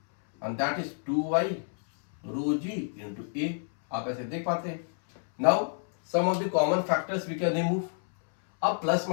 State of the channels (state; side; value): silent; right; 59 dB below the other